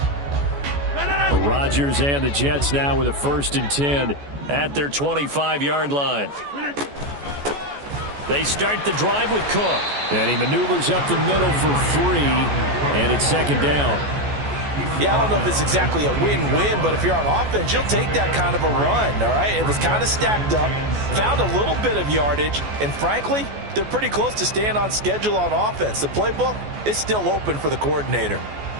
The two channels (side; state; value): left; late; 14 ms